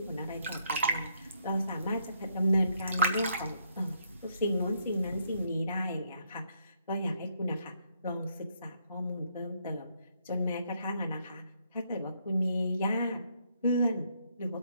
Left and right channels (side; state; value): both; inverted; correlation -0.72